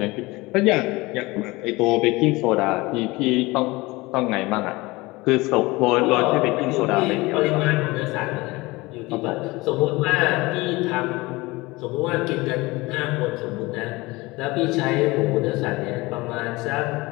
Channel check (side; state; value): right; quieter; 22.0 dB